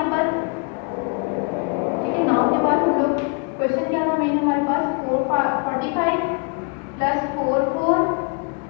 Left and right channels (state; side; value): quieter; right; 33.6 dB